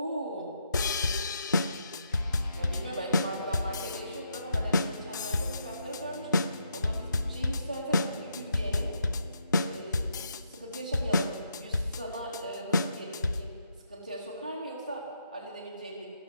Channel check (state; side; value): inverted; both; correlation -0.78